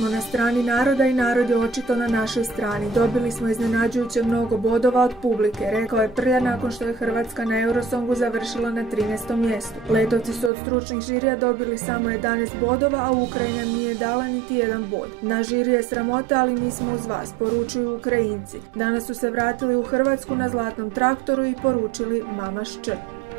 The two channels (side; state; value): left; drops out; at 10.5 s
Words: na strani naroda i narod je očito na našoj strani. Dobili smo iznenađujuće mnogo bodova od publike, rekao je Prlja nakon što je Hrvatska na Eurosongu završila na 13. mjestu. Letovci su od stručnih žirija dobili samo 11 bodova, a Ukrajina nije dala niti jedan bod. Na žiri je sramota, ali mi smo uz vas, poručuju Ukrajinci. Danas su se vratili u Hrvatsku na zlatnom traktoru i poručili Mamaš Č.